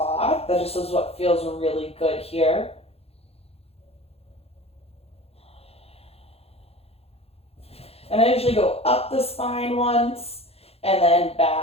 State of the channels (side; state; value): right; late; 0.29 ms